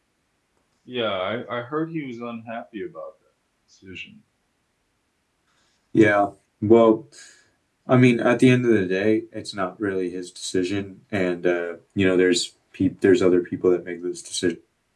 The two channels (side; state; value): both; identical; correlation 1.00